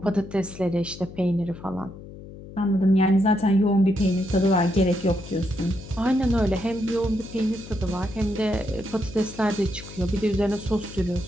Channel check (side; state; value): left; noise; hum, 15 dB below the sound